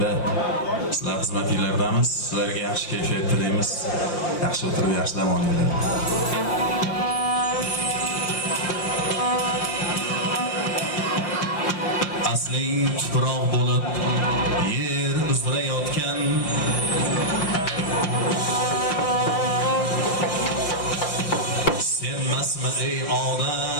sizlar xizmatinglardamiz. Sizlarga yaxshi kayfiyat tilaymiz. Yaxshi o'tirib yaxshi dam olinglar. Asling tuproq bo'lib yer uzra yotgan senmasmi ey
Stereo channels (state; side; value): late; right; 5.7 ms